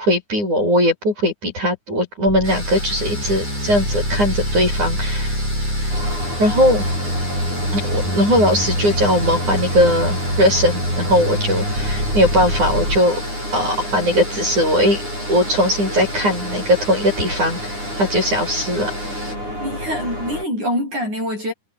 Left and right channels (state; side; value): late; left; 9.7 ms